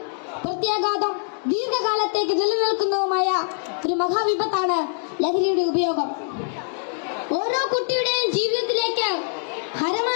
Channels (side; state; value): right; silent; digital silence